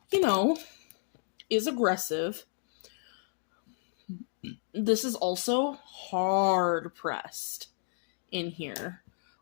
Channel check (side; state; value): right; silent; digital silence